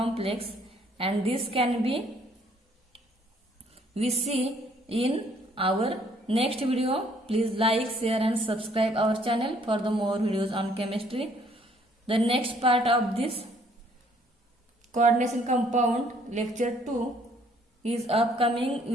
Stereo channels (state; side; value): normal; both; correlation 0.63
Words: and this can be we see in our next video. Please like, share and subscribe our channel for the more videos on chemistry. The next part of this coordination compound lecture 2 is upcoming